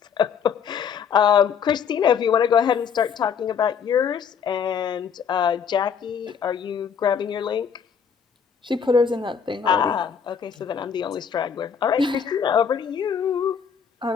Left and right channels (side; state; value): right; quieter; 7.1 dB